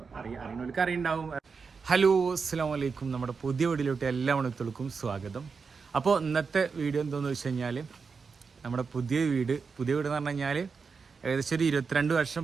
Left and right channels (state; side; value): quieter; left; 5.2 dB